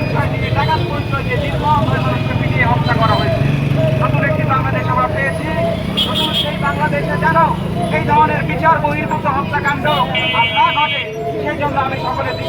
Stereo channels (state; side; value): identical; both; correlation 1.00